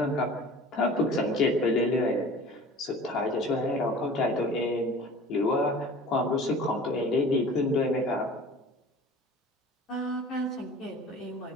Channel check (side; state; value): both; normal; correlation 0.43